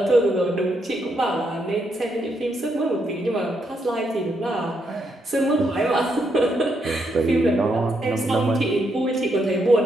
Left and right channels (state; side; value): normal; both; correlation 0.78